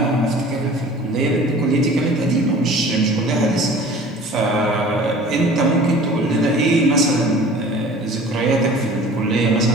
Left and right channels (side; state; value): both; normal; correlation 0.45